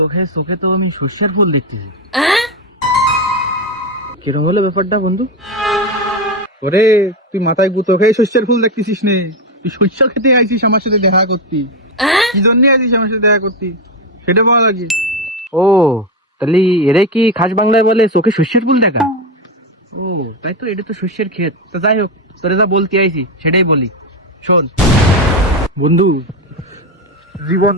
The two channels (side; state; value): both; normal; correlation 0.12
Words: খেয়ে চোখে তো আমি সর্ষের ফুল দেখতেছি। কিরম হলো ব্যাপারটা বন্ধু? ওরে, তুই মাথায় গুঁতো খেয়ে শস্যের ফুল দেখতেছিস নে? তুই শস্য খেতে আইছিস আমার সাথে দেখা করতি? কি জন্য আইছিস আমার সাথে দেখা করতি সেটা বলা লাগে। ও, তাহলে এরে কি খাস বাংলায় বলে চোখে সর্ষের ফুল দেখা? ও তাই তো, এটা তো শস্যের ক্ষেত। তো যাই হোক, তোরে যা বলতে আইছি সেটাই বলি, শোন বন্ধু। জীবন